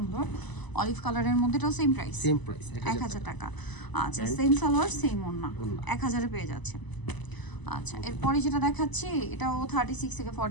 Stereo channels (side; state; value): right; late; 1.0 ms